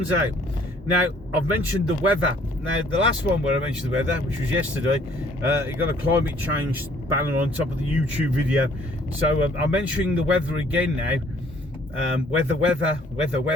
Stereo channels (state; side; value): normal; both; correlation 0.60